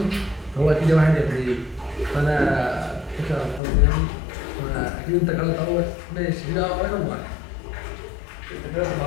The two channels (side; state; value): right; drops out; at 3.6 s